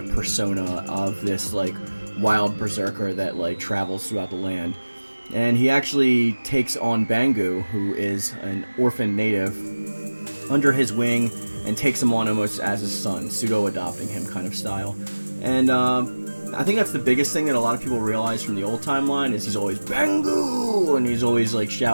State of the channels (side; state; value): both; inverted; correlation -1.00